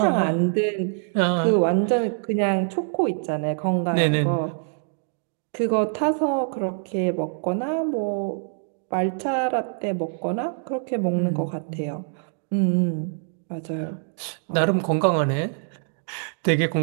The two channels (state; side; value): silent; left; 62 dB below the other